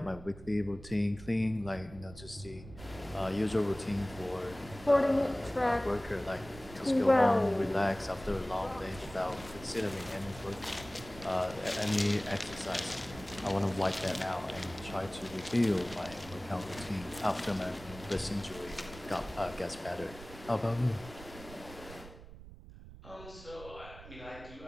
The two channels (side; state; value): right; noise; rumble, 16 dB below the sound